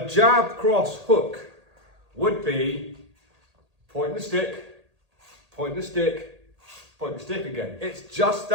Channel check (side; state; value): left; late; 1.8 ms